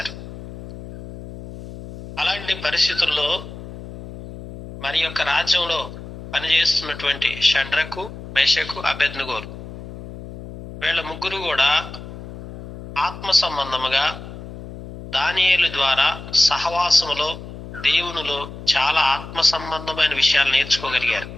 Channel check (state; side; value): noise; left; hum, 13 dB below the sound